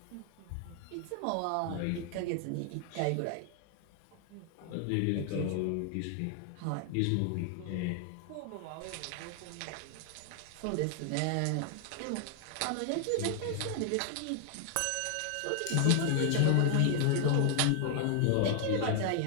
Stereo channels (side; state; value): both; different; correlation 0.00